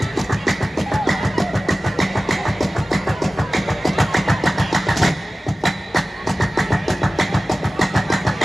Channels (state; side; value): normal; both; correlation 0.96